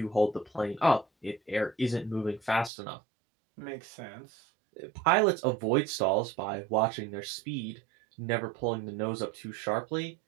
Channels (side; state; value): left; drops out; at 2.7 s